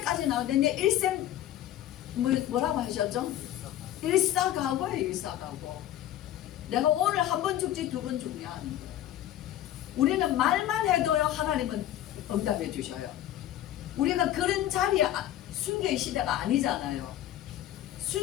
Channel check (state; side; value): quieter; right; 12.6 dB